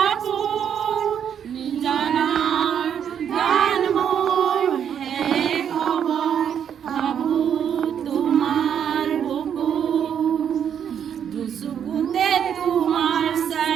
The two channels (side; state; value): left; quieter; 8.5 dB